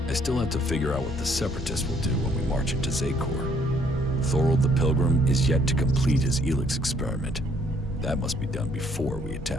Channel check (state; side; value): normal; both; correlation 0.65